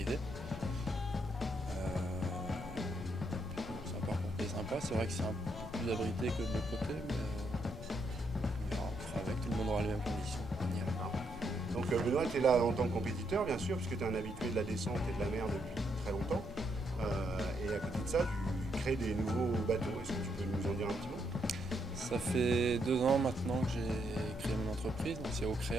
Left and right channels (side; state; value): left; noise; rumble, 12 dB below the sound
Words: C'est un parcours qui est sympa. C'est vrai que c'est un peu plus abrité que de l'autre côté, mais on verra, on fera avec. Tout le monde aura les mêmes conditions. On ira. Donc Benoît, tu es là en tant que compétiteur, bien sûr, puisque tu es un habitué de la descente et de la mer depuis très longtemps. Et à côté de ça, tu crées des nouveaux bateaux. Est-ce que tu peux nous en dire un petit mot? Ça fait 2 ans maintenant que j'ai créé mon entreprise, donc c'est